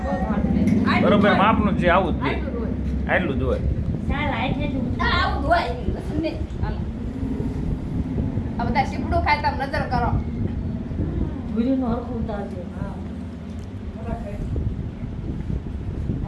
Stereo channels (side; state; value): both; identical; correlation 1.00